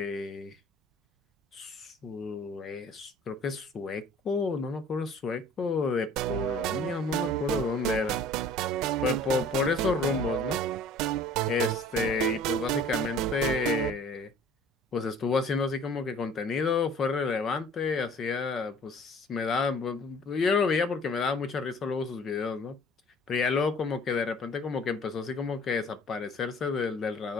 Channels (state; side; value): normal; both; correlation 0.50